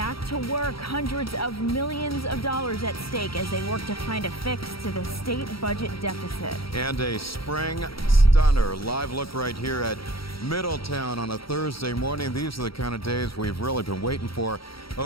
to work. Hundreds of millions of dollars at stake as they work to find a fix to the state budget deficit. And a spring stunner. Live look right here at Middletown on a Thursday morning. These are the kind of days we've really been waiting for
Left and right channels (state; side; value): late; right; 0.75 ms